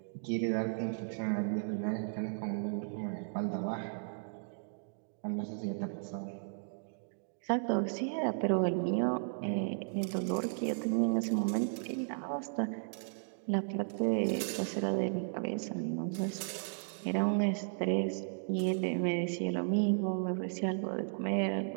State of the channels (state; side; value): silent; left; digital silence